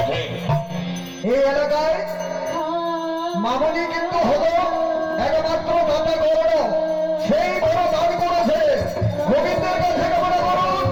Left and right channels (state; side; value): identical; both; correlation 1.00